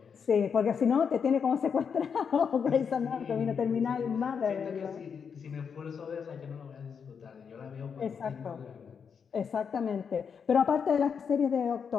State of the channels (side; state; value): right; quieter; 6.6 dB